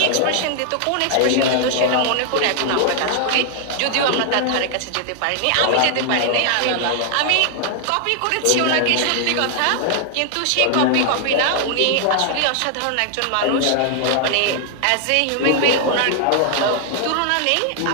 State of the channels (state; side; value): different; both; correlation 0.00